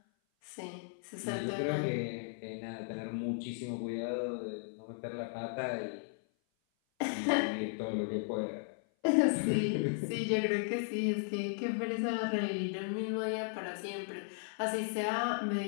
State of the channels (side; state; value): right; silent; 54 dB below the other